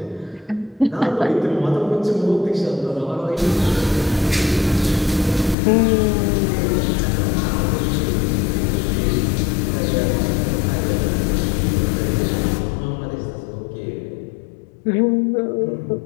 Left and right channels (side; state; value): right; drops out; at 5.6 s